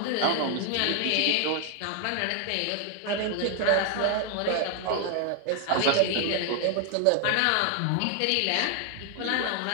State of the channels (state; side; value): different; both; correlation 0.00